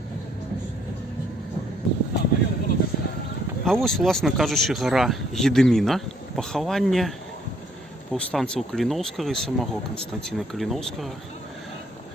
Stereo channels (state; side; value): normal; both; correlation 0.66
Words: А вось, власна кажучы, гара Гедыміна. Пахаванне паўстанцаў Каліноўскага і самого Канстанціна Каліноўскага.